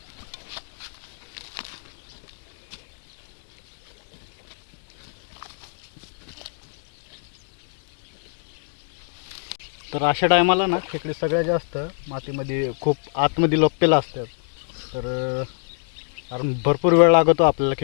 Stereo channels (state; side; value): silent; right; 59 dB below the other